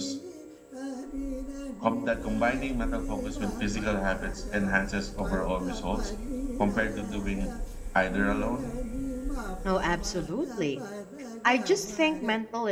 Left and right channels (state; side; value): identical; both; correlation 1.00